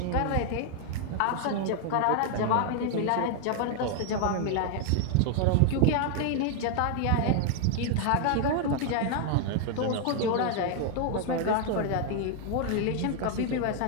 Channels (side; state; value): both; different; correlation 0.00